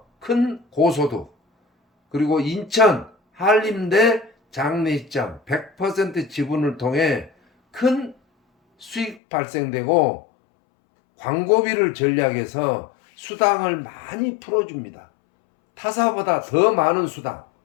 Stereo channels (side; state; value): right; drops out; at 9.2 s